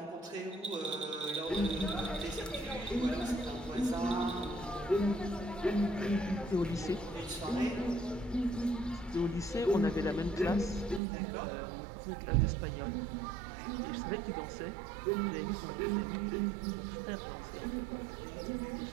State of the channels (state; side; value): drops out; left; at 11.0 s